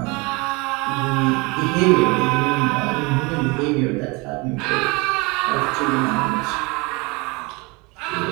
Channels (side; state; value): left; quieter; 26.6 dB